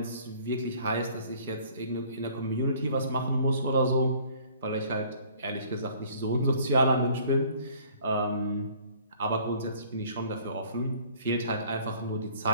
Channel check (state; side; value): inverted; both; correlation -0.54